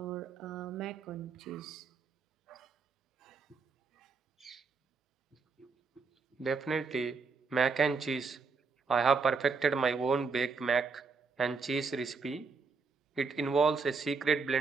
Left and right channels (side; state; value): left; quieter; 4.7 dB